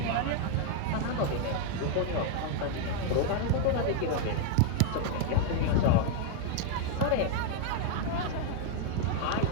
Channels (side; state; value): both; different; correlation 0.00